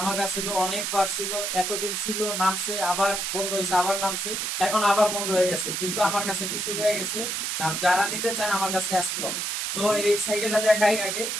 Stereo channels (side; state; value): right; noise; hiss, 2 dB below the sound